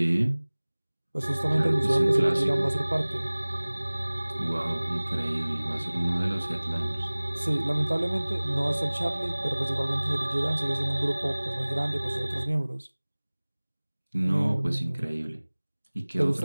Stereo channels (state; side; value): inverted; both; correlation -1.00